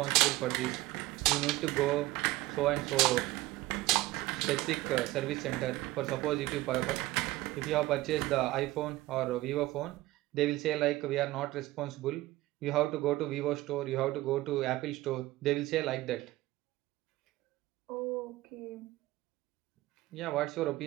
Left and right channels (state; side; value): quieter; left; 17.9 dB